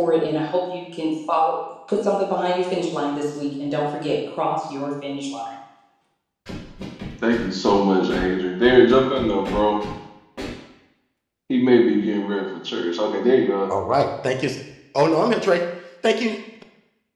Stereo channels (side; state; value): both; identical; correlation 1.00